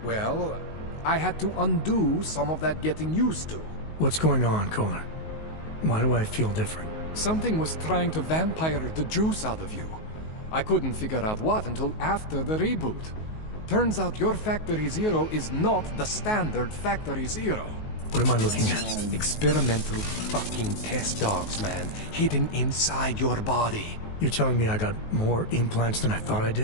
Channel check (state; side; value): late; right; 19 ms